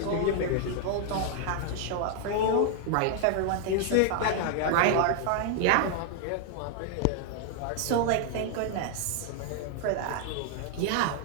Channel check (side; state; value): both; different; correlation 0.00